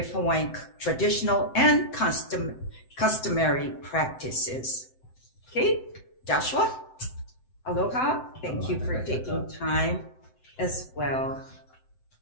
Hawaiian traditional and customary practices. Okay, Joshua, aloha. Thank you for taking time as well.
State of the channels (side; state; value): right; late; 7.8 ms